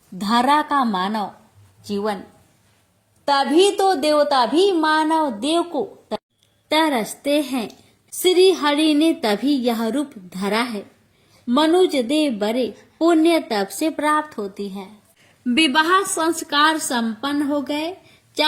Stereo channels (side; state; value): both; identical; correlation 1.00